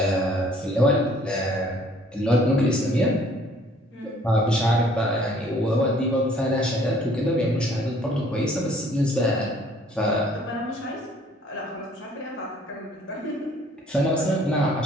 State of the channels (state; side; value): normal; both; correlation 0.58